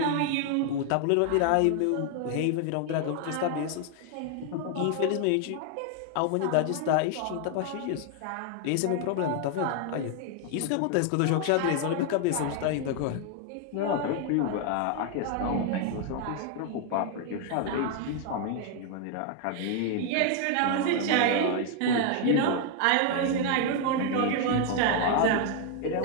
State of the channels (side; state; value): both; different; correlation 0.00